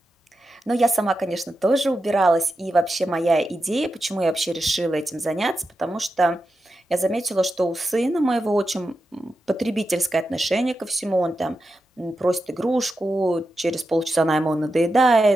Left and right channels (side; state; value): both; normal; correlation 0.89